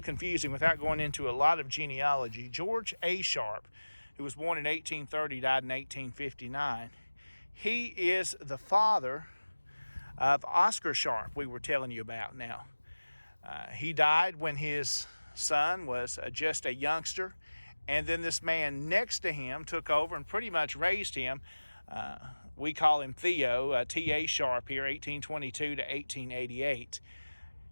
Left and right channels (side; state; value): both; inverted; correlation -1.00